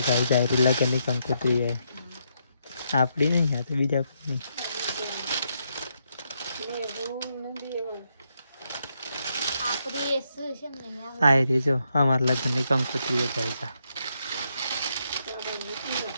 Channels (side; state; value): both; inverted; correlation -0.79